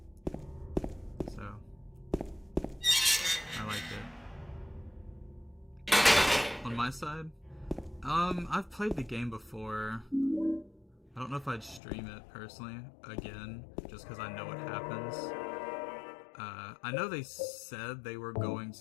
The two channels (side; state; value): right; drops out; at 11.8 s